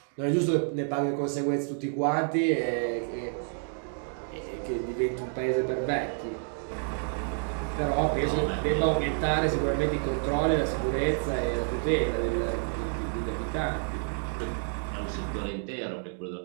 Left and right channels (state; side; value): silent; left; 58 dB below the other